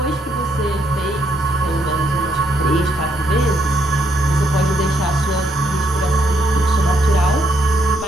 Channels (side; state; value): both; normal; correlation 0.74